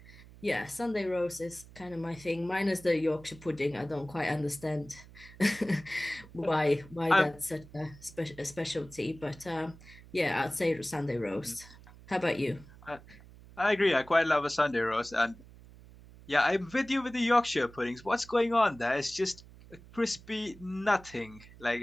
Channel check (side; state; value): right; noise; hum, 20 dB below the sound